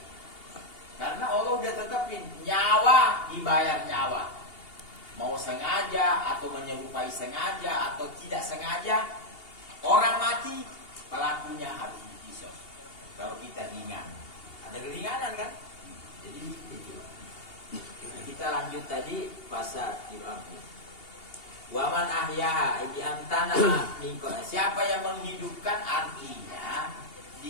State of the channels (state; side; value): late; right; 2.8 ms